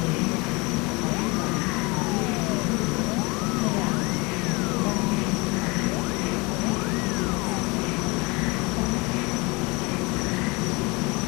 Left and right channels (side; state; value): right; quieter; 26.3 dB